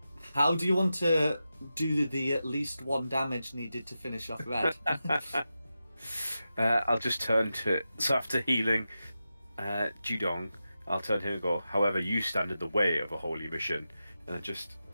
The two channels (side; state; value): both; inverted; correlation -0.91